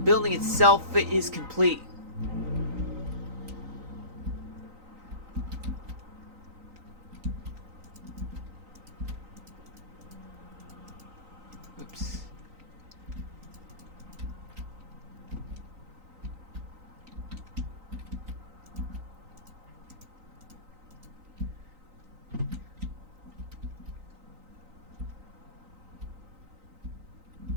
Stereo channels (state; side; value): late; left; 3.9 ms